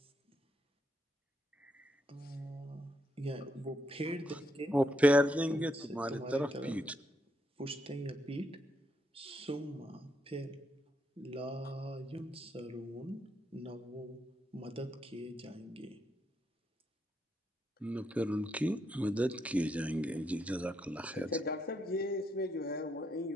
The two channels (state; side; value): normal; both; correlation 0.79